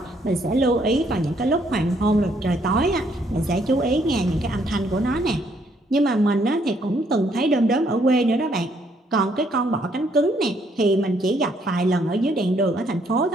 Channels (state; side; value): normal; both; correlation 0.69